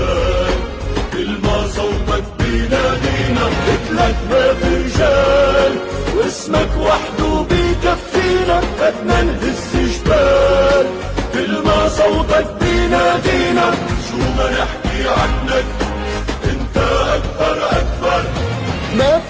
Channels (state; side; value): identical; both; correlation 1.00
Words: كل ما صوتك بينادينا. قلتلك ما في رجال واسمك وحده بيكفينا، بدنا نهز جبال، كل ما صوتك بينادينا، شو ما نحكي عنك انت اكبر اكبر. ما